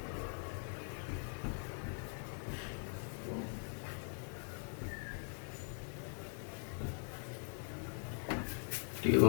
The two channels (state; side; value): silent; right; 50 dB below the other